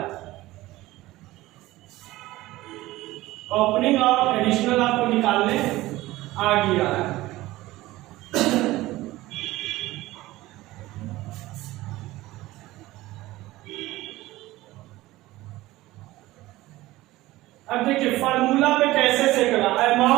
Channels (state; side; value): quieter; left; 17.7 dB